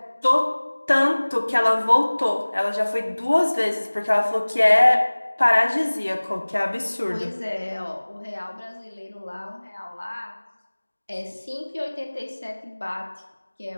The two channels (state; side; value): inverted; both; correlation -1.00